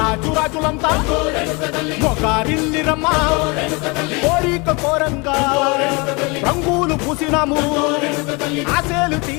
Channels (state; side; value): quieter; right; 28.4 dB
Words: రాజులంతా మొగారిల్లిరమ్మ కోరిక కోరంగా రంగులు పూసినాము ఆశలు